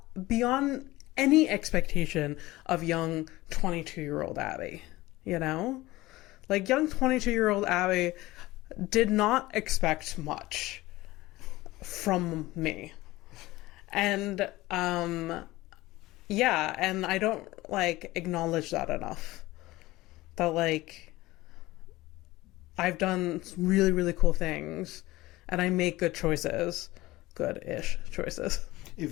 beyond any expectation of young 22-year-old Abby, you know? Like, young 22-year-old Abby did not expect much from me. And, yeah, and I don't, like, acknowledge that enough. That, like, I've done really, really cool things, and I make good choices. Good-ish choices.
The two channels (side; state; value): right; quieter; 18.7 dB